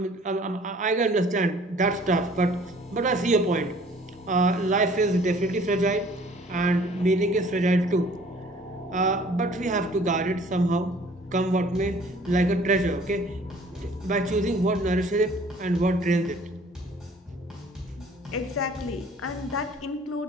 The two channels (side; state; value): both; normal; correlation 0.53